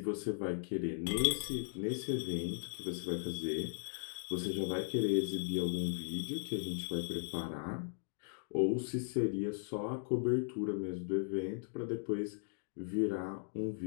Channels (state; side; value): silent; right; digital silence